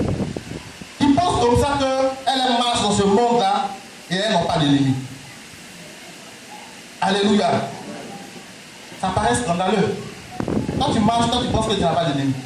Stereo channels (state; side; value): identical; both; correlation 1.00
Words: qui pensent comme ça qu'elles marchent dans ce monde-là et elles n'ont pas d'ennemis. Alléluia. Ça paraît scandaleux. Quand tu marches, quand tu penses que tu n'as pas d'ennemis,